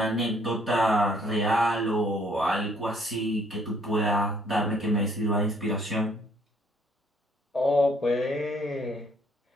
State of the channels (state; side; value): normal; both; correlation 0.64